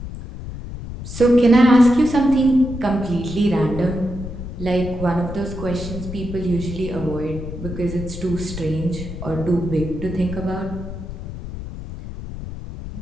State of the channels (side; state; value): left; noise; rumble, 9 dB below the sound